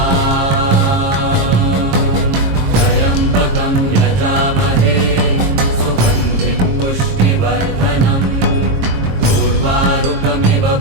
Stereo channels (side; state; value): left; late; 22 ms